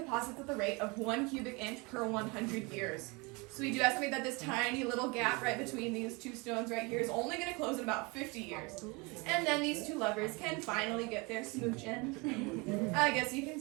at the rate of 1 cubic inch per 100 years. So we do estimate that this tiny little gap right between these two stones right here is only going to close in about 50 years. And then these two lovers can finally get their smooch in. I guess you can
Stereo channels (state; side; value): quieter; left; 27.5 dB